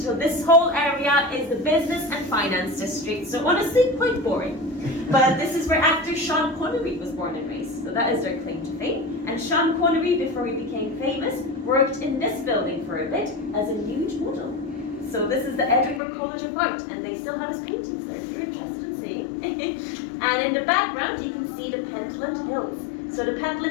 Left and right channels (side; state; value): right; drops out; at 16.0 s